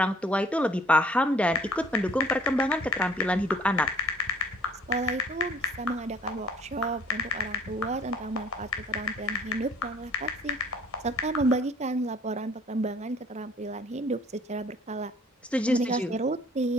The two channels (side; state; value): both; normal; correlation 0.55